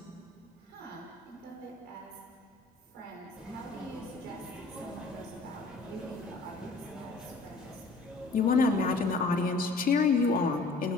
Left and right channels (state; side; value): quieter; right; 3.6 dB